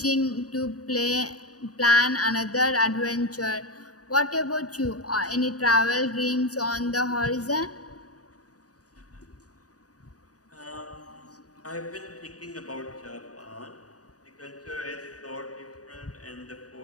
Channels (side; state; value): right; late; 0.67 ms